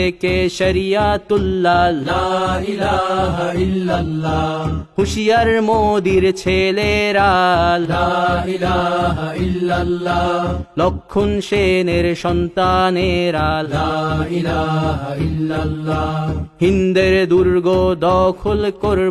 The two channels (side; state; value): both; identical; correlation 1.00